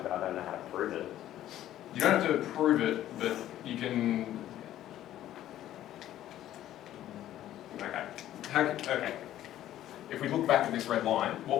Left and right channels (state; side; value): quieter; right; 12.7 dB